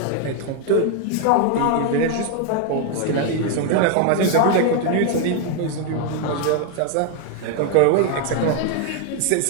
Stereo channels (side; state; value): both; different; correlation 0.01